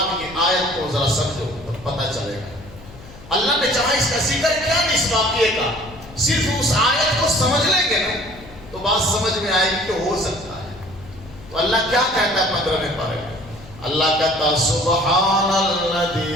کی آیت کو ذرا سمجھو تو پتہ چلے گا۔ اللہ نے چاہا اس کا ذکر کیا نہیں اس واقعے کا، صرف اس آیت کو سمجھ لیں گے نا تو بات سمجھ میں آئے گی کہ ہو سکتا ہے۔ تو اللہ کیا کہتا ہے 15ویں پارے میں؟ اللہ کہتا سبحان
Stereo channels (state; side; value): noise; left; hum, 19 dB below the sound